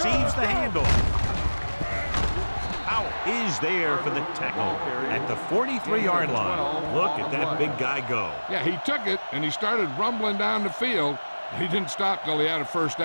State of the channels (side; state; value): both; inverted; correlation -1.00